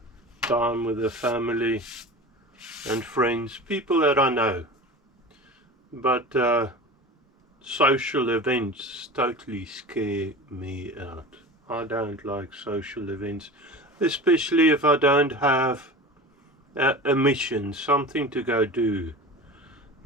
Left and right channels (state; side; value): normal; both; correlation 0.34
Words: time with the family and friends, people that I know, but social events totally scare me out. I don't like social events, especially if I don't have a mission, something to go do,